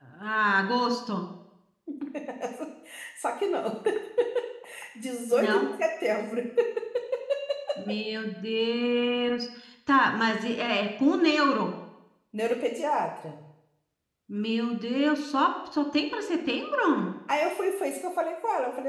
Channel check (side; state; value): both; identical; correlation 1.00